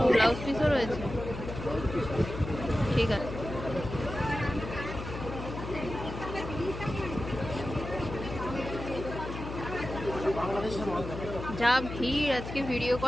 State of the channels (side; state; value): left; noise; hum, 8 dB below the sound